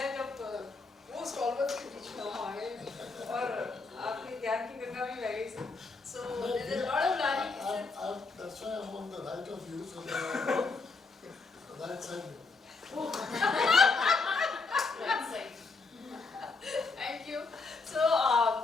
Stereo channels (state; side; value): quieter; right; 4.0 dB